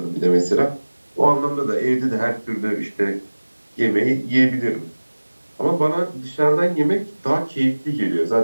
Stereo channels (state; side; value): inverted; both; correlation -1.00